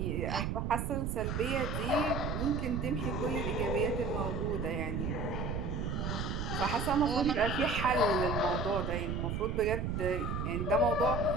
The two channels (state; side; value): noise; right; rumble, 2 dB below the sound